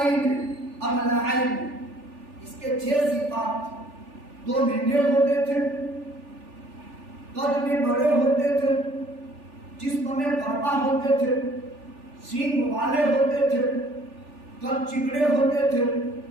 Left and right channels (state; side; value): late; left; 3.4 ms